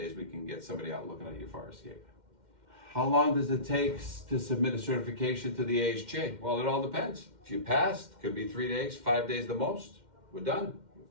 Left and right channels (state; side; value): late; left; 2.1 ms